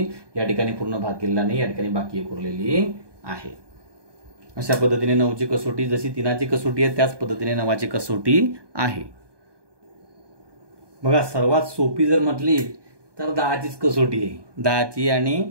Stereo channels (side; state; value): left; late; 1.2 ms